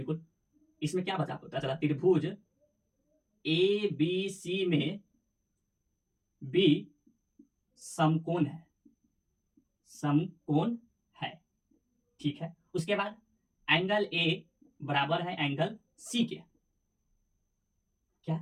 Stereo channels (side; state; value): both; identical; correlation 1.00